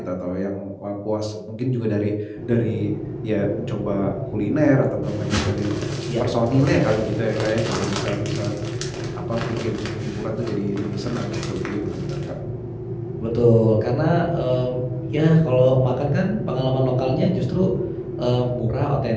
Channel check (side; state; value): both; identical; correlation 1.00